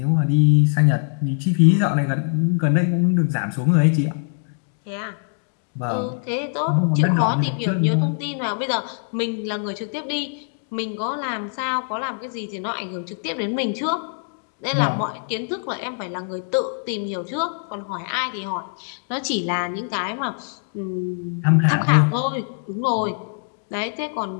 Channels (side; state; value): right; silent; digital silence